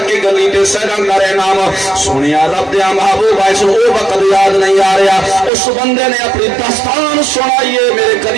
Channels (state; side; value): drops out; left; at 5.5 s